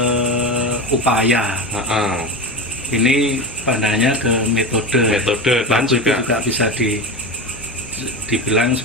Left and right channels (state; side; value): normal; both; correlation 0.23